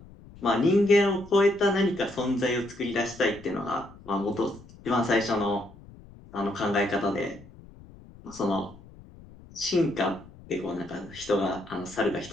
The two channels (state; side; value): noise; left; rumble, 21 dB below the sound